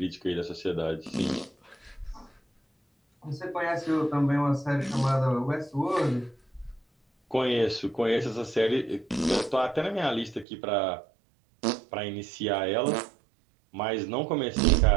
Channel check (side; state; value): left; drops out; at 10.5 s